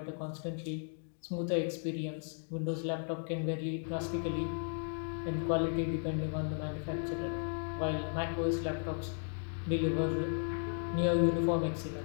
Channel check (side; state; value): right; silent; 54 dB below the other